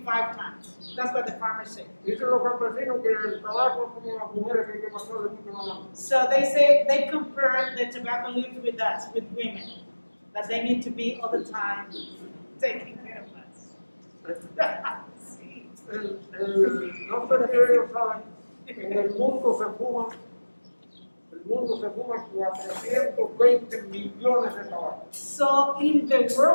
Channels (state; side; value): inverted; both; correlation -1.00